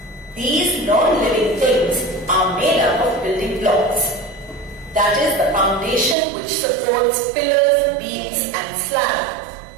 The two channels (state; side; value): drops out; left; at 6.2 s